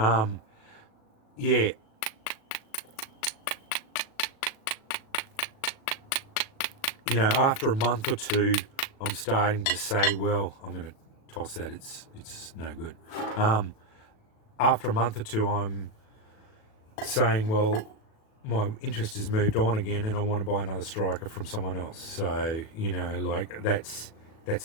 You know, after a month or two, I'm starting to say, well, I'm going to toss that. It's no good. After a month or two, I'm saying, well, my interest has moved on again, and I want to buy another striker from someone else. So, you know, like that's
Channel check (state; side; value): late; right; 37 ms